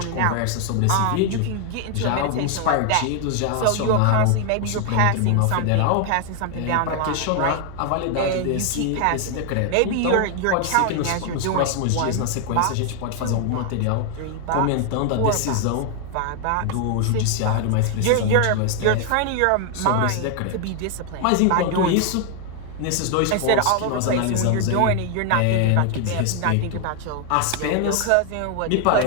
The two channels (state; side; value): different; both; correlation 0.00